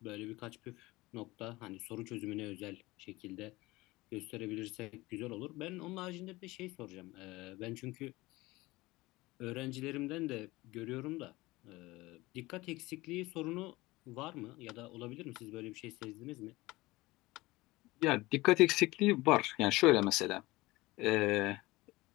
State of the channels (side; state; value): right; quieter; 20.4 dB